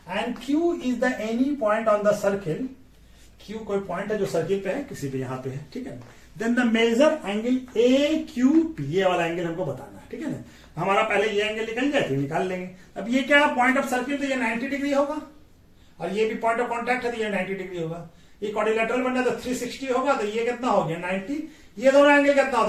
and Q is the any point on the circle, Q कोई पॉइंट है जो सर्किल पे है, किसी पे यहाँ पे है, ठीक है। Then the major angle A Q P, ये वाला एंगल हमको बताना है, ठीक है ना। हमारा पहले ये एंगल निकल जाए तो निकाल लेंगे। अब ये क्या पॉइंट ऑफ सर्किल, तो ये 90 डिग्री होगा, और ये भी पॉइंट ऑफ कॉन्टैक्ट है तो ये 90 डिग्री होगा, ये क्वाड्रिलेटरल बनना तो 360 होगा, तो ये कितना हो गया 90, ये दोनों एंगल कितना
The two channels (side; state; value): both; identical; correlation 1.00